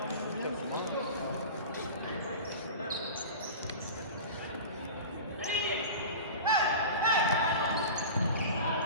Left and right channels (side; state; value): both; inverted; correlation -0.33